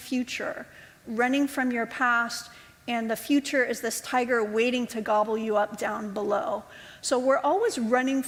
running from your past, and the future is this tiger waiting to gobble you up down below. So we're always running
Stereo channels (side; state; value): both; identical; correlation 1.00